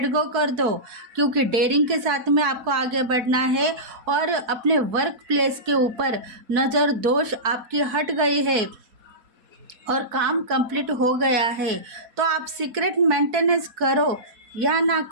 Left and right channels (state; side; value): late; left; 4.6 ms